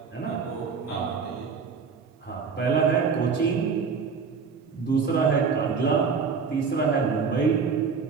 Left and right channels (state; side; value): quieter; left; 5.5 dB